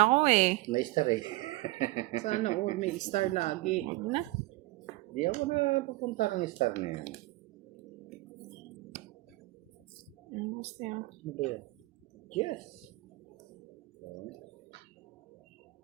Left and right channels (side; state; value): left; quieter; 20.7 dB